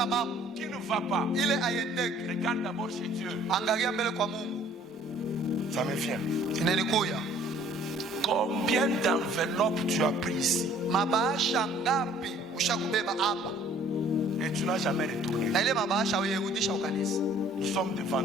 mambo qui ne va pas, ile aiendeke, regarde d'abord chez Dieu. angalia mbele kwa Mungu. Ça me vient. Inanikuya Combien d'enveloppes tu as pris ici mabahasha ngapi ushakubeba hapa, et tu n'as jamais retourné? na ile mabahasha uyerudisha ukanisa. Nous sommes devant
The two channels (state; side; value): normal; both; correlation 0.55